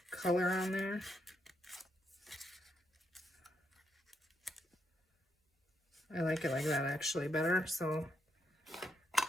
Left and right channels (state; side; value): normal; both; correlation 0.79